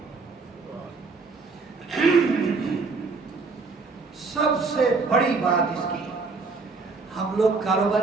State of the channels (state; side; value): quieter; left; 4.2 dB